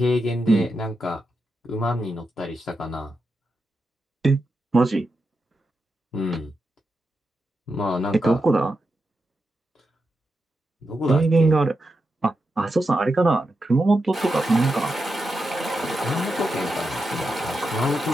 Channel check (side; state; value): both; normal; correlation 0.87